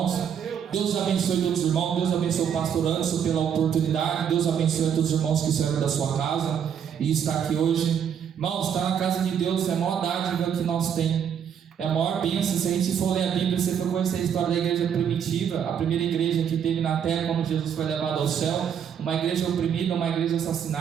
Deus abençoe todos os irmãos. Deus abençoe o pastor Anderson pela oportunidade. Deus abençoe a todos os irmãos que servem da sua casa e está aqui hoje. Irmãos, estar na casa de Deus é a maior dádiva que nós temos. É a maior bênção. Se a gente for ler a Bíblia, você for conhecer a história da igreja primitiva, a primeira igreja que teve na terra quando Jesus foi levado ao céu, uma igreja oprimida, uma igreja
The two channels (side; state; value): left; quieter; 8.2 dB